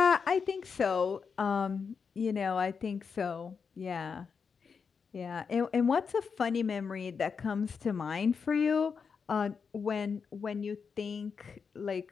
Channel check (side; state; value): right; quieter; 5.8 dB